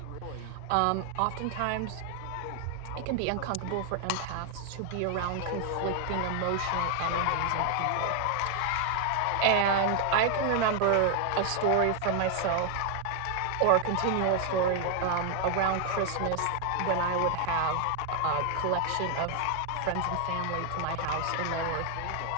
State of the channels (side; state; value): both; different; correlation 0.00